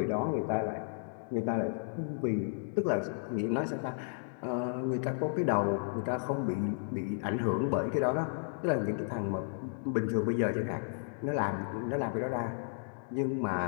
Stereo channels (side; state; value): right; silent; digital silence